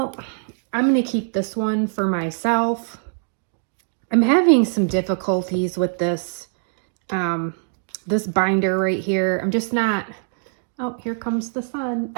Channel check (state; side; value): silent; left; digital silence